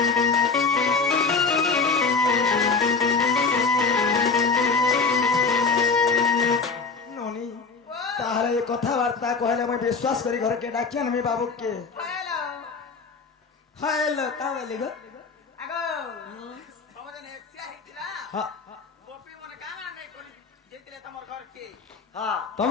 কথাবার্তা কহলে আমি বিশ্বাস করি ঘরকে ডাকি আনবি বাবুকে হ্যালো কা বলি গো আগো সমাজে এক্সিয়া হিতলা গোপী মনে কানা নাই করি যেতিলে তোমার ঘর কে হ্যাঁ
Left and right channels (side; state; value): right; quieter; 4.7 dB